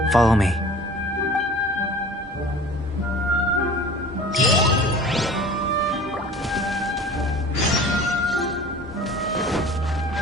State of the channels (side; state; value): both; normal; correlation 0.43